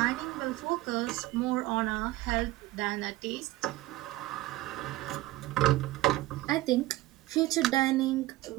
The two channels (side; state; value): left; quieter; 17.4 dB